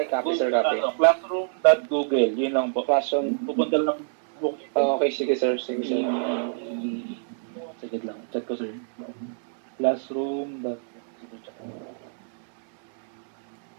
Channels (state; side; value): silent; left; digital silence